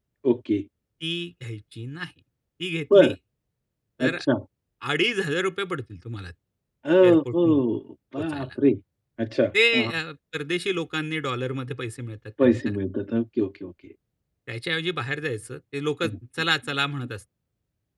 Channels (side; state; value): both; identical; correlation 1.00